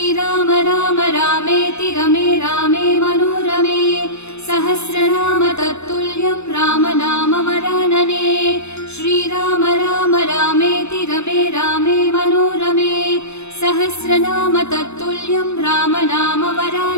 राम रामेति रमे रामे मनोरमे सहस्रनाम तत्तुल्यं राम नाम वरानने। श्रीराम राम रामेति रमे रामे मनोरमे सहस्रनाम तत्तुल्यं राम नाम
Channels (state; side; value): late; right; 0.81 ms